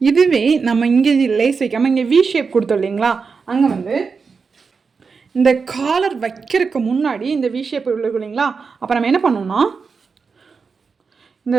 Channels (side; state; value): left; quieter; 5.1 dB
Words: இதுவே நம்ம இங்கே லேஸ் வைக்காமல் இங்கே வி ஷேப் கொடுத்தோம் இல்லைங்களா, அங்கே வந்து இந்த காலர் வைக்கிறதுக்கு முன்னாடி இந்த வி ஷேப் இருக்கும் இல்லைங்களா, அப்போ நம்ம என்ன பண்ணோம்னா இந்த